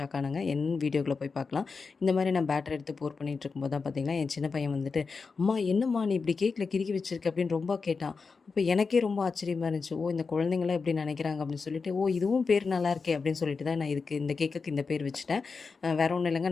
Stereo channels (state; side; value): quieter; right; 4.8 dB